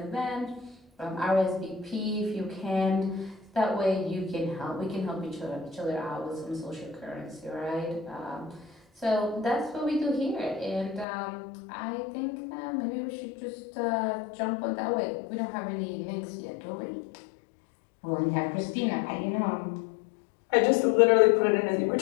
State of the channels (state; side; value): drops out; right; at 11.1 s